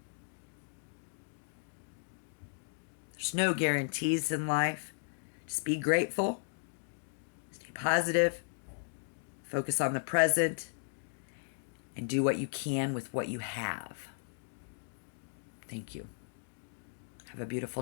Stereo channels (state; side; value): silent; right; digital silence